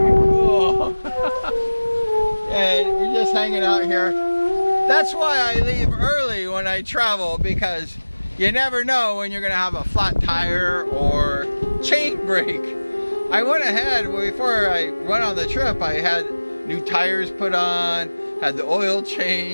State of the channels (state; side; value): inverted; both; correlation -1.00